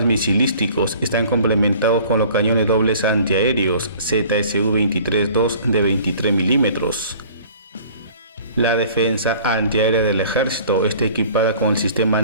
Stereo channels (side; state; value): both; inverted; correlation -0.49